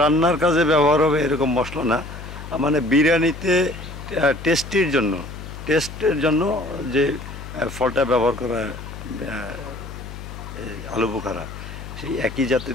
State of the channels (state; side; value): noise; left; hum, 12 dB below the sound